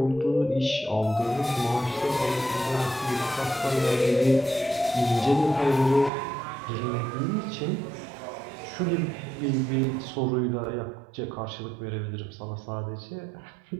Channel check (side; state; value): left; drops out; at 6.1 s